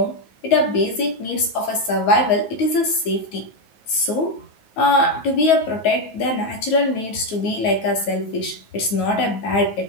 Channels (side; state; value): right; late; 9.3 ms